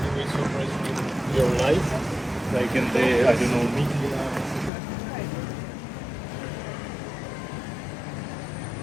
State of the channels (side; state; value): right; drops out; at 4.7 s